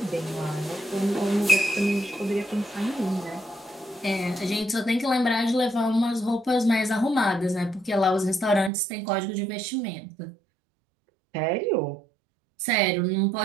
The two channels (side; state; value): left; drops out; at 8.7 s